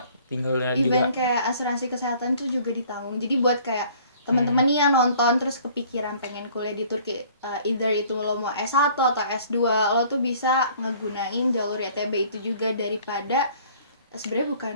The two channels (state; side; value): inverted; both; correlation -0.54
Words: tinggalnya even juga. kayak asuransi kesehatan tuh juga ditanggung. Jadi buat kayak teman-teman nih yang nonton terus kepikiran pengen kuliah di Turki, either itu lo mau S1 atau S2, lo tuh bisa ngegunain jalur YTB itu juga, daripada sebenarnya bukan